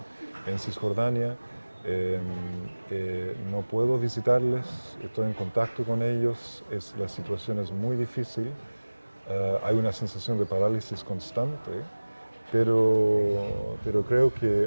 en Cisjordania. No puedo visitarles, estoy en contacto con ellos, la situación es muy difícil, hay una sensación de parálisis constante, pero creo que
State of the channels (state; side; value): inverted; both; correlation -1.00